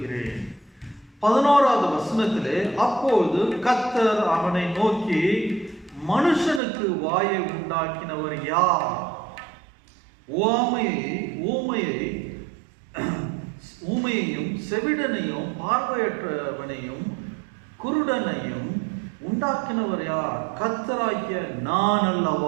11வது வசனத்திலே, அப்போது கர்த்தர் அவனை நோக்கி, மனுஷனுக்கு வாயை உண்டாக்கினவர் யார்? ஊமையையும் செவிடனையும் பார்வையற்றவனையும் குருடனையும் உண்டாக்கினவர் யார்? கர்த்தராகிய நான்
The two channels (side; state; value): left; drops out; at 6.6 s